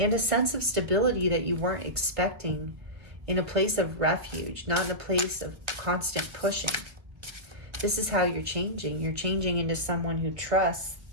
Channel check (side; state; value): left; late; 1.5 ms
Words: sense of stability that you weren't expecting, in a place of refuge, not in a place of constant pushing. This is how you're changing. You're changing into someone who trusts